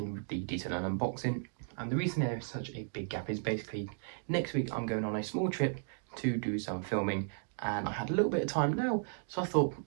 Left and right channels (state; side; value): silent; left; digital silence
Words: the detail and unboxing. And the reason there is such a big gap is basically next week I'm going on a small trip to do some filming, and I had a little bit of time now, so I thought